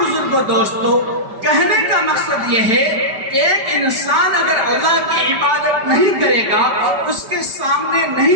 دوستو کہنے کا مقصد یہ ہے کہ ایک انسان اگر اللہ کی عبادت نہیں کرے گا، اس کے سامنے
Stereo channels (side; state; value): left; late; 5.1 ms